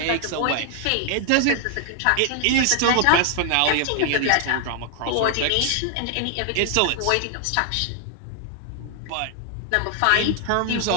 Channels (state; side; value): different; both; correlation 0.00